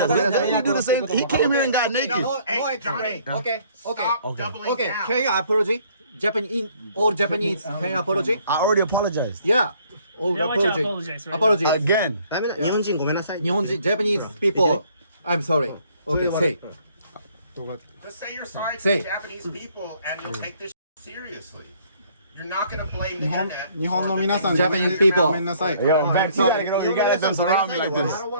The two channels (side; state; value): both; inverted; correlation -0.61